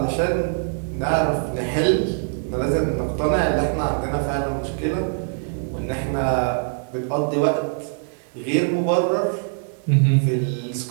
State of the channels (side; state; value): left; silent; digital silence